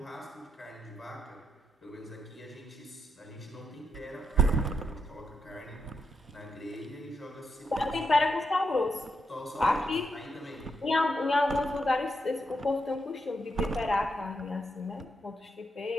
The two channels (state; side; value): normal; both; correlation 0.81